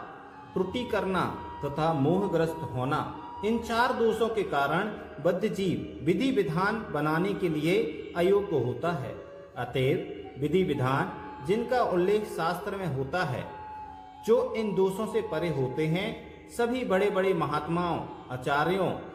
त्रुटि करना तथा मोहग्रस्त होना। इन 4 दोषों के कारण बद्ध जीव विधि विधान बनाने के लिए अयोग्य होता है। अतएव विधि विधान जिनका उल्लेख शास्त्र में होता है, जो इन दोषों से परे होते हैं, सभी बड़े बड़े महात्माओं, आचार्यों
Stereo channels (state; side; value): identical; both; correlation 1.00